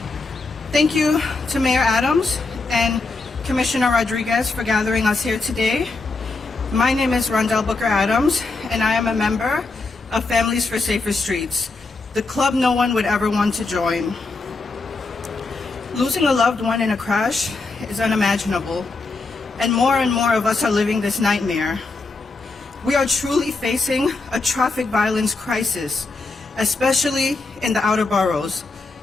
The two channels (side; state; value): right; quieter; 3.7 dB